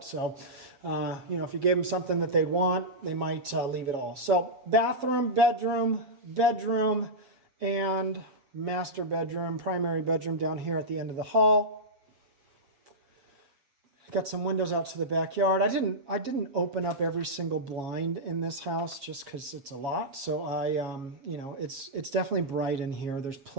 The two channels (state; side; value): late; left; 7.2 ms